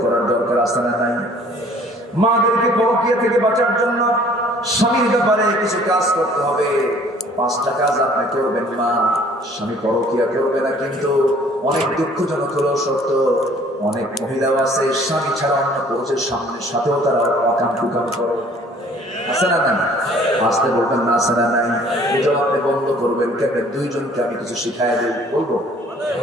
করার দরকার আছে না নাই? মাদেরকে পরকিয়া থেকে বাঁচার জন্য স্বামীর ব্যাপারে কিছু কাজ করতে হবে। 5টা কাজ আপনি করবেন। মা, স্বামী পরকিয়া করবে না, কিন্তু অনেক দুঃখজনক হলেও সত্য, অনেক মহিলাও আছে স্বামী ছাড়া অন্য পুরুষের সাথেও তারা অকাম কুকাম করে। আছে না নাই? আসতে বলবেন না, আছে না নাই? এটাও আপনি বন্ধ করবেন। কেন? 2 জনকে আমি কিছু শিখাই দিই, বলবো?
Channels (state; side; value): normal; both; correlation 0.55